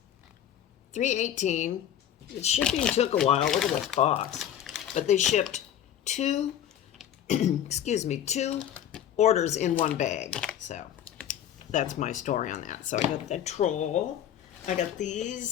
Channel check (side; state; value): right; quieter; 10.3 dB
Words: $3.18. The shipping took a while. Look at this box. But they shipped two, excuse me, 2 orders in one bag. So that's my story on that. So I got the troll. I got